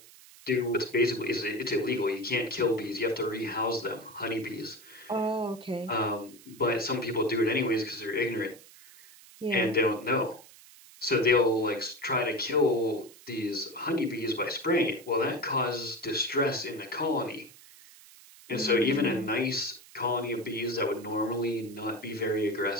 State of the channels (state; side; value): noise; right; hiss, 22 dB below the sound